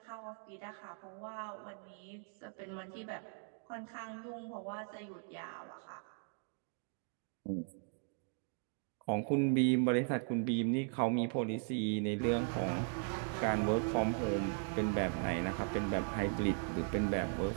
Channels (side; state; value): left; silent; 52 dB below the other